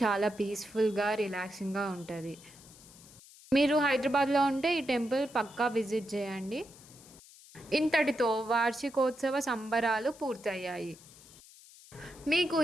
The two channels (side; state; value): left; noise; hiss, 22 dB below the sound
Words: చాలా పీస్ఫుల్గా రిలాక్సింగ్గా ఉంటుంది. మీరు హైదరాబాద్లో ఉంటే ఈ టెంపుల్ పక్కా విజిట్ చేయండి. ఇంతటితో వార్షికోత్సవ సంబరాలు పూర్తయ్యాయి. మీకు